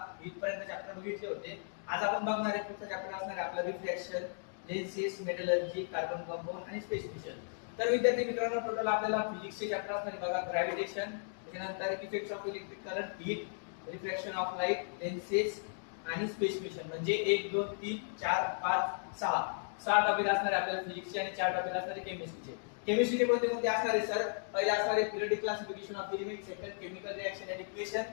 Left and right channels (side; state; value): right; silent; digital silence